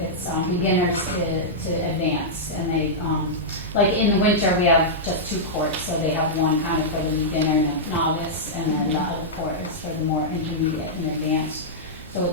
beginners to advanced, and they like in the winter we have just 2 courts, so they have one kind of for the beginner and the novice, and then the other court is for the more intermediate and advanced. So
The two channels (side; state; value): both; normal; correlation -0.10